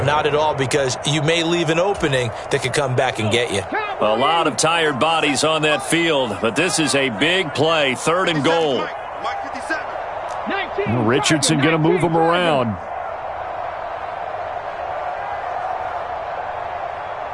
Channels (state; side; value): identical; both; correlation 1.00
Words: not at all, because you may leave an opening that could come back and get you. A lot of tired bodies on that field, but this is a big play, 3rd and goal. Richardson going to move him around.